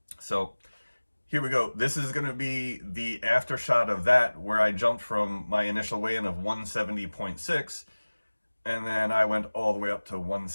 So here we go. This is going to be the after shot of that, where I jumped from my initial weigh-in of 170.6, and then I went all the way up to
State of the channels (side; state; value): both; inverted; correlation -1.00